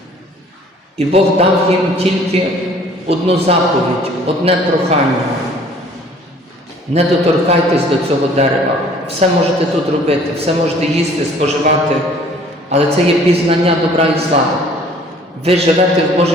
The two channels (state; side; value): normal; both; correlation 0.54